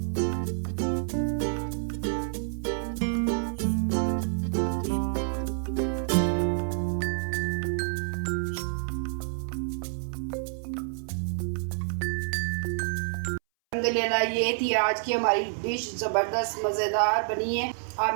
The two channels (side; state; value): left; silent; 59 dB below the other